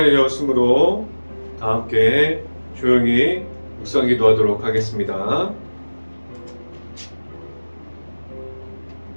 되었으므로 다 함께 조용히 묵상 기도하도록 하겠습니다.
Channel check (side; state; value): both; inverted; correlation -1.00